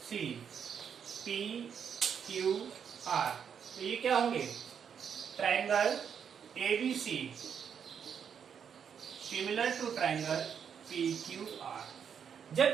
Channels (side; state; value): left; quieter; 7.5 dB